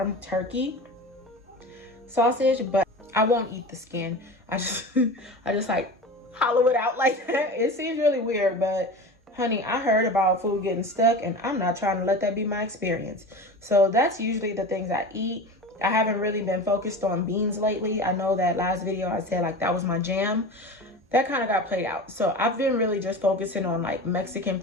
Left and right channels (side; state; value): both; normal; correlation 0.31